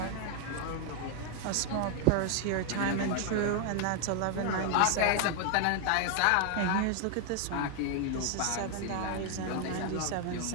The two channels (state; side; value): different; both; correlation 0.00